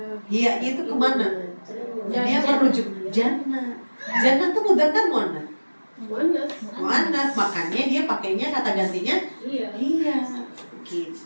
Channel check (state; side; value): inverted; both; correlation -1.00